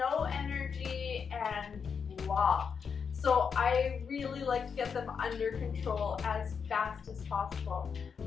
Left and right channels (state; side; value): quieter; right; 6.3 dB